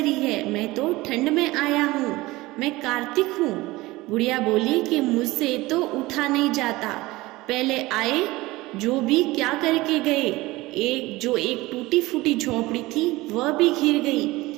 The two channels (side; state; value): left; quieter; 19.9 dB